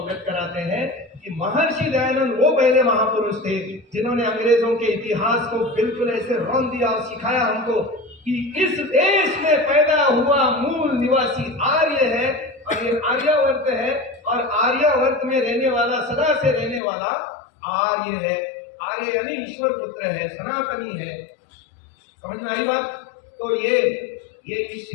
कराते हैं कि महर्षि दयानंद वो पहले महापुरुष थे जिन्होंने अंग्रेजों के इतिहास को बिल्कुल ऐसे रौंद दिया और सिखाया हमको कि इस देश में पैदा हुआ मूल निवासी आर्य है, और ये आर्यावर्त है, और आर्यावर्त में रहने वाला, सदा से रहने वाला आर्य है। आर्य यानी ईश्वर पुत्र है, सनातनी है। समझ में आई बात? तो ये इस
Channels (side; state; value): right; drops out; at 16.8 s